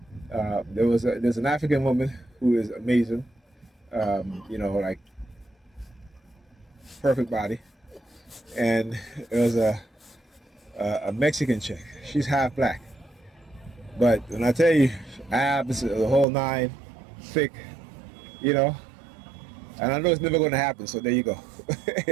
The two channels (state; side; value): drops out; left; at 16.2 s